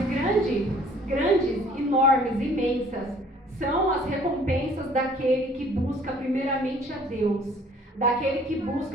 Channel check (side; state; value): both; normal; correlation 0.55